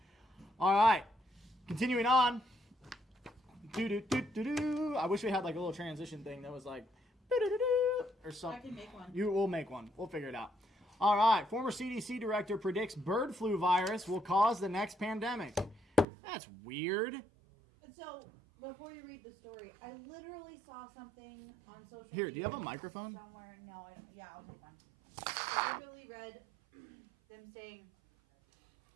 All right, continuing on. I wish we had like a little transition thing that was like or something. I can make one. We'll make one. We'll figure it out. All right, former CDC director predicts bird flu virus will cause the next pandemic. That's weird. So, before you read the story, I literally saw something on social Here, media. do you have a microphone? Somewhere. No, I'll take one. I literally read them saying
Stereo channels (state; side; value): drops out; left; at 16.1 s